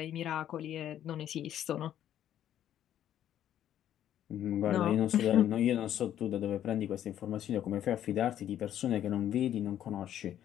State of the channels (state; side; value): quieter; right; 11.0 dB